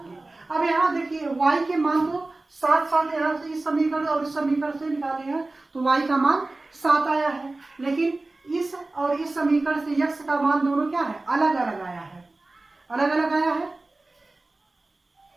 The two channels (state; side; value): quieter; left; 3.0 dB